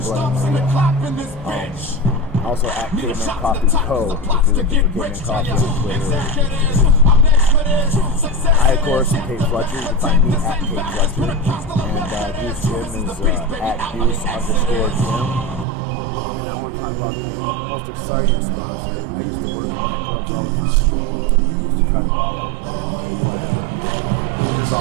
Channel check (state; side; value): drops out; left; at 15.7 s